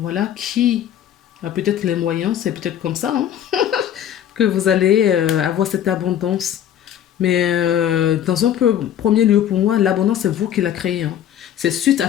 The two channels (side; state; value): right; quieter; 10.3 dB